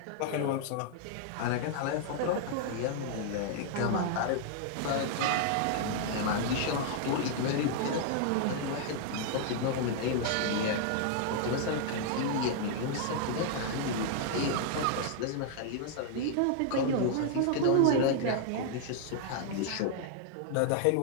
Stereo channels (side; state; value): both; different; correlation 0.00